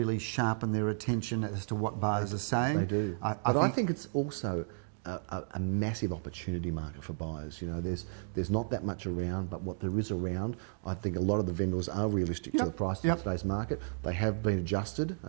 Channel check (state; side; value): silent; left; digital silence